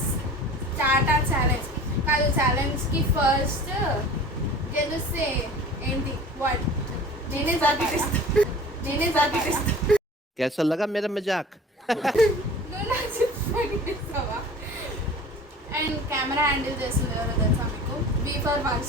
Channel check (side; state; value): both; normal; correlation 0.41